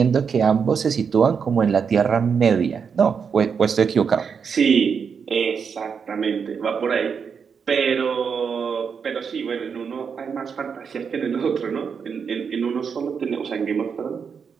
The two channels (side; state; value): left; quieter; 6.4 dB